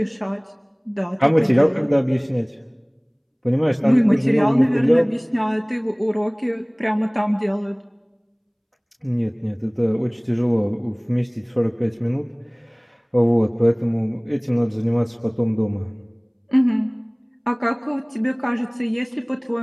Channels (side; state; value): both; identical; correlation 1.00